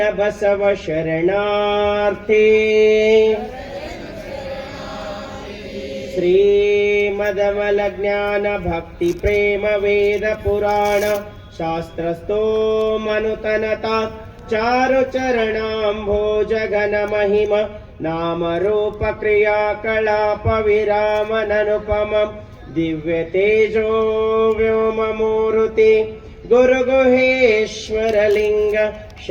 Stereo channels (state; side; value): identical; both; correlation 1.00